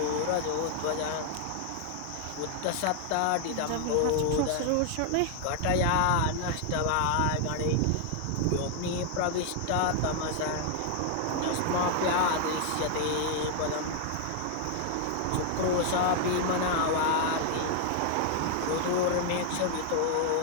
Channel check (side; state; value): both; different; correlation 0.00